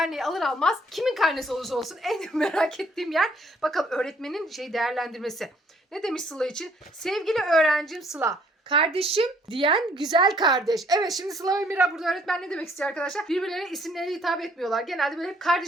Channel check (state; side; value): normal; both; correlation 0.63